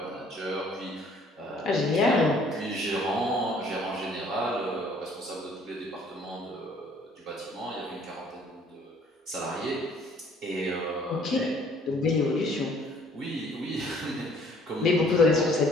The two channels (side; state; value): both; normal; correlation 0.58